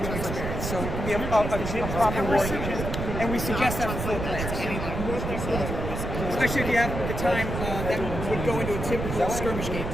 experience. So it can be a proper war unit. And we suggest that for 4 players. Especially if you have the time that would go into a typical skirmish game,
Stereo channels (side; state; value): right; noise; rumble, 4 dB below the sound